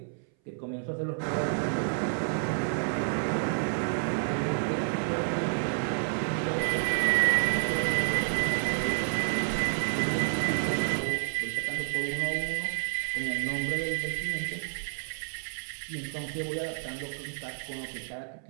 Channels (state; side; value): silent; left; 58 dB below the other